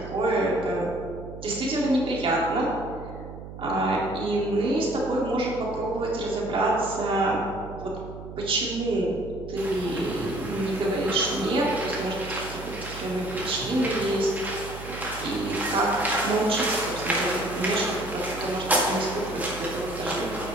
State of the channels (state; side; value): noise; right; hum, 12 dB below the sound